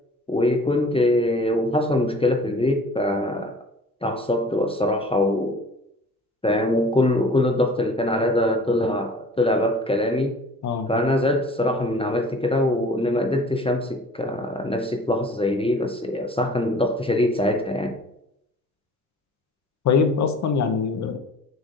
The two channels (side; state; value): both; normal; correlation 0.47